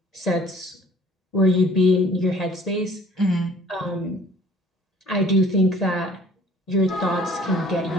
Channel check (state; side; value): normal; both; correlation 0.53